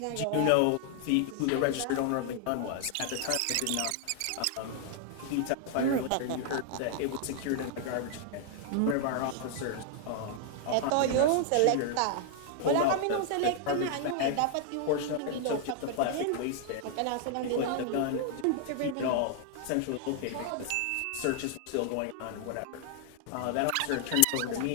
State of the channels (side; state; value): both; different; correlation 0.00